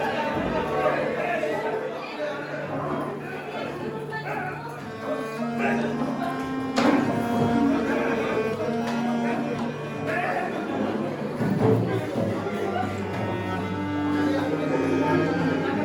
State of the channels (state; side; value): identical; both; correlation 1.00